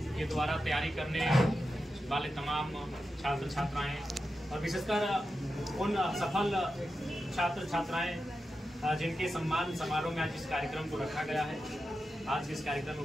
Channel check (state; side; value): normal; both; correlation 0.90